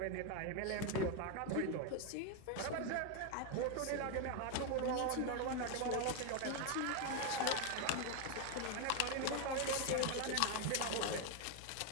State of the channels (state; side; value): different; both; correlation 0.01